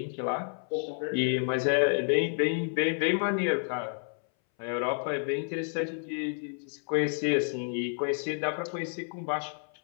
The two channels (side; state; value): right; silent; 58 dB below the other